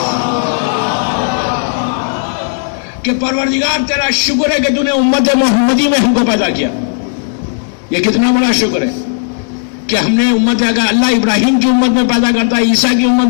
کہ پروردگار تیرا شکر ہے کہ تو نے امت محمدی میں ہم کو پیدا کیا. یہ کتنا بڑا شکر ہے کہ ہم نے امت، اگر اللہ ابراہیم کی امت میں پیدا کرتا، عیسیٰ کی امت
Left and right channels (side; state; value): right; silent; digital silence